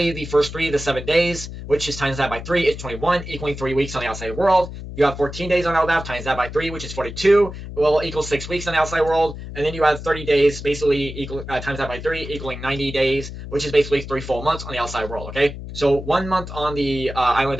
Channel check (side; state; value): left; noise; hum, 10 dB below the sound